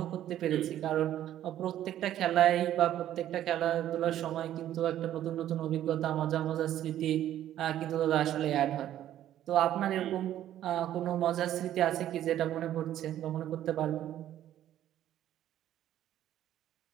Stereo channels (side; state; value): left; quieter; 12.0 dB